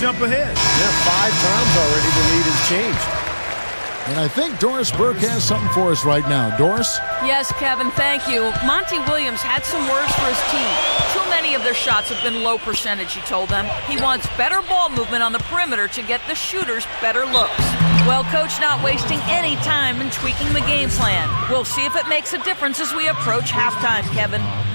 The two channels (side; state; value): both; inverted; correlation -1.00